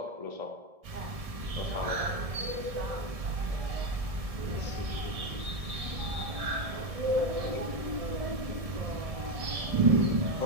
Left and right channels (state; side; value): late; left; 1.7 ms